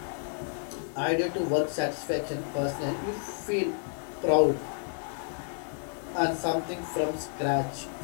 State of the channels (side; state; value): right; silent; 57 dB below the other